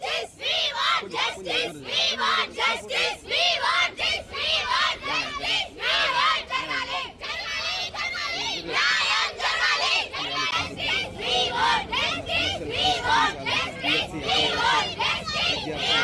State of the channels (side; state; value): both; identical; correlation 1.00